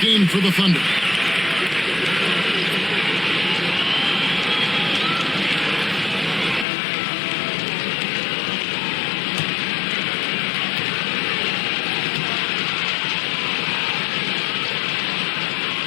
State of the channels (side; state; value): right; drops out; at 6.7 s